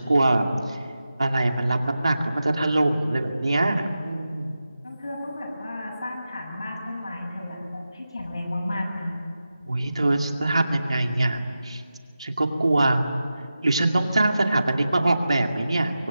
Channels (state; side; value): inverted; both; correlation -0.92